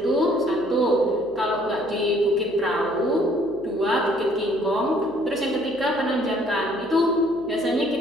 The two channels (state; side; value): noise; right; hum, 26 dB below the sound